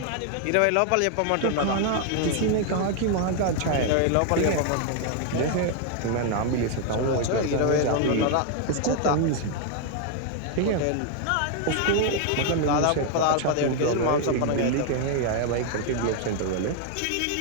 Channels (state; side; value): different; both; correlation 0.00